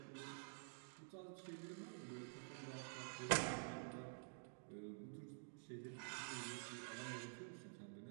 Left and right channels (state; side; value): silent; left; digital silence